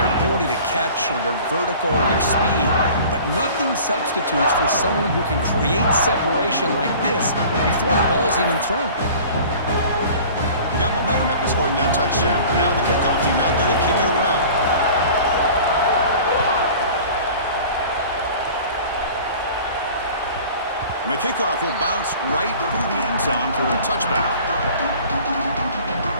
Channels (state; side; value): inverted; both; correlation -0.44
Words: ability to catch or their vertical or their speed, but nothing substitutes for someone who can create separation like this before the ball's even thrown. got momentum after scoring that touchdown. Now the kickoff team out there to kick it away. And the kickoff will bounce right through the end zone for a touchback.